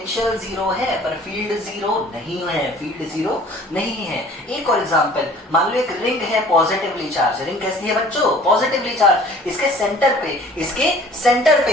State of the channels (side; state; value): both; normal; correlation 0.50